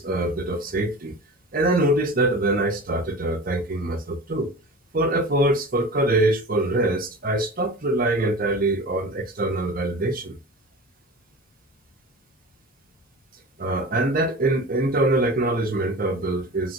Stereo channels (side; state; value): both; normal; correlation 0.35